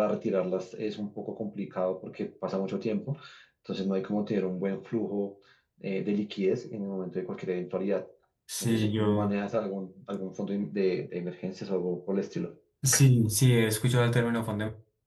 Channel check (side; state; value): both; identical; correlation 1.00